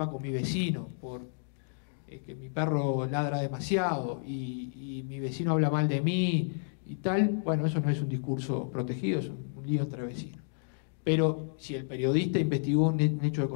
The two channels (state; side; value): silent; right; digital silence